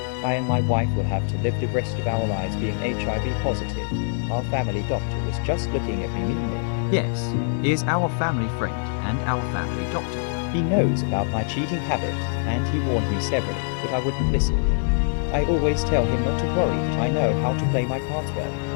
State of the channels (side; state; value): right; silent; 63 dB below the other